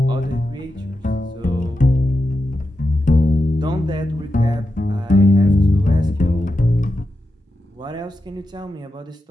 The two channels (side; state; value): both; normal; correlation 0.89